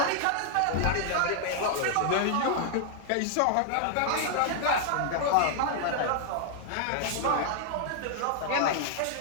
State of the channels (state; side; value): different; both; correlation 0.00